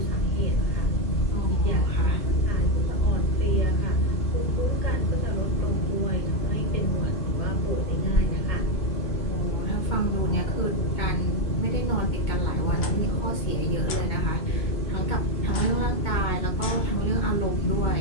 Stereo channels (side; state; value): right; late; 2.2 ms